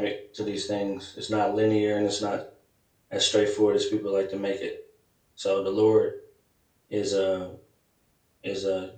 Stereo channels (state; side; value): identical; both; correlation 1.00